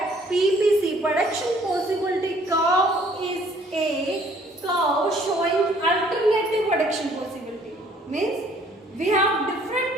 PPC, production possibility curve, is a curve showing alternative production possibility. Means we have different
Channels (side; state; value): both; normal; correlation 0.59